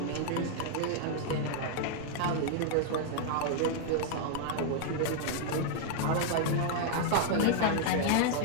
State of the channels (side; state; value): both; different; correlation 0.00